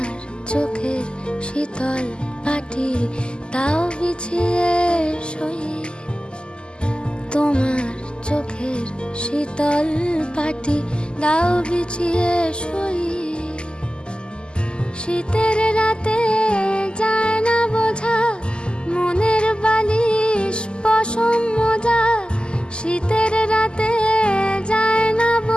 চোখের শীতল পাটি দাও বিছিয়ে শুই। তোমার চোখের শীতল পাটি দাও বিছিয়ে শুই। শীতের রাতে যায় না বোঝা মনের বালিশ পশম মোজা। শীতের রাতে যায় না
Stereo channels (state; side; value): late; right; 0.049 ms